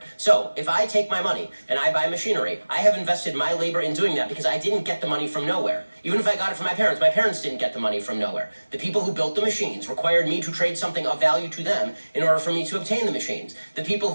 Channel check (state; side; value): inverted; both; correlation -1.00